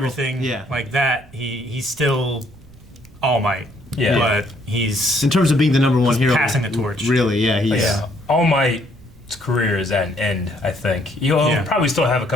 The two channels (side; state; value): right; noise; rumble, 24 dB below the sound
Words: everything yeah. like that, he's still All Might. Yeah. But he's In terms of being the number one hero, passing the torch. Really, yeah, he's. yeah. All Might's career is at an end, I think. He'll probably still have a